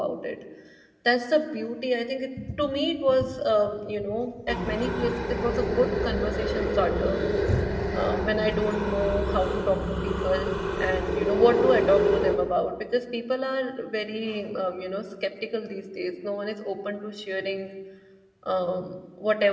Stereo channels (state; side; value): identical; both; correlation 1.00